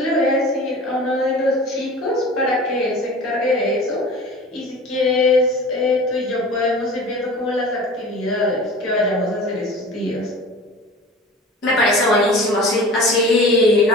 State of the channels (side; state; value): both; normal; correlation 0.39